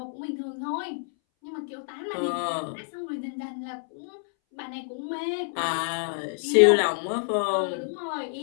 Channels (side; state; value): right; silent; 60 dB below the other